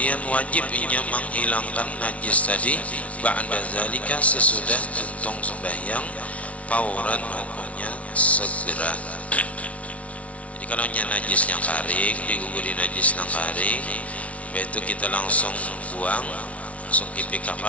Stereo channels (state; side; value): late; right; 0.065 ms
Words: wajib inya menghilangkan najis tadi, ba'da zalika, sesudah tuntung sembahyang, fauran, hukumnya segera. Jadi kalau najisnya kering, diguguri najis yang kering, itu kita langsung buang, langsung